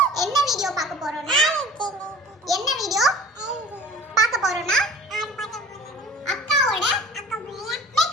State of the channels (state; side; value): normal; both; correlation 0.45